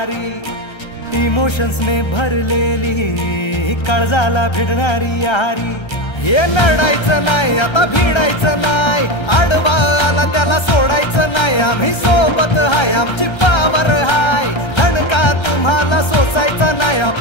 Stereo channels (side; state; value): right; late; 1.3 ms